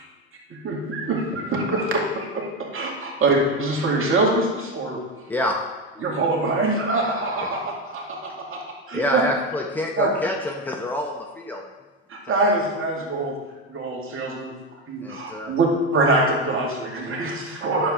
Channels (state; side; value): normal; both; correlation 0.13